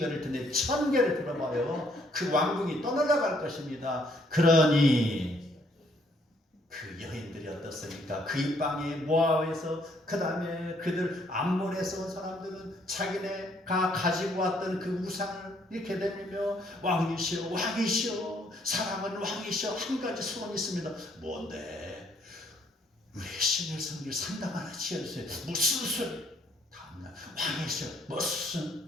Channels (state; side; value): normal; both; correlation 0.67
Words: 텐데 1000개를 들어봐요. 그 왕궁이 떠날아갈 것입니다. 그러니 그 여인들이 어떻습니까? 그 입방에 모압에서 그 다음에 그들 암몬에서 온 사람들은 자기네가 가지고 왔던 그 우상을 이렇게 내밀며 왕이시여 사랑은 왕이시여 한 가지 소원이 있습니다. 뭔데? 우리 신을 섬길 산당 하나 지어주세요. 무슨 소리? 다음날 왕이시여